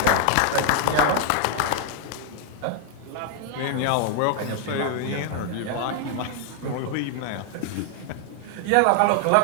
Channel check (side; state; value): both; different; correlation 0.00